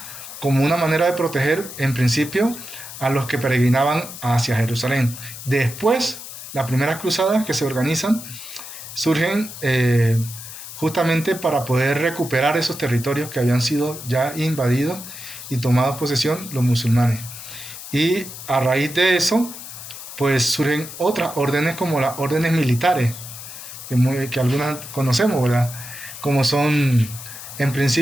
como una manera de proteger, en principio, a los que peregrinaban hacia Jerusalén. Después, las primeras cruzadas que se organizan surgen justamente para poder recuperar esos territorios que habían sido ya invadidos y tomados posesión los musulmanes. Y a raíz de eso, pues surgen otras órdenes como las órdenes militares, que algunas conocemos, ¿verdad? Como son, en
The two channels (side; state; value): left; noise; hiss, 12 dB below the sound